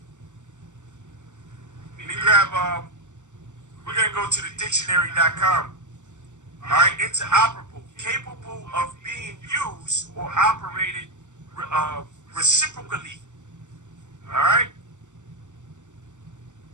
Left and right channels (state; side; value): late; left; 0.85 ms